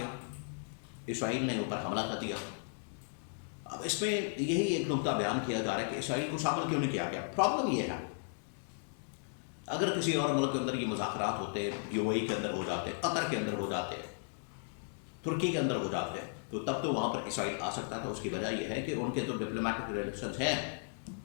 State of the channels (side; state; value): right; silent; digital silence